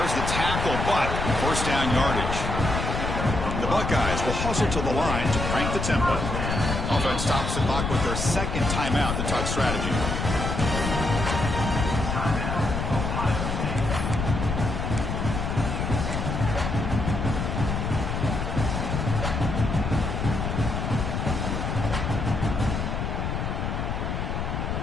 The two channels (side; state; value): left; noise; rumble, 2 dB below the sound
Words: the tackle, but first down yardage. The Buckeyes will hustle to the line to crank the tempo. Offense stops the clock with their second timeout, the tuck strategy.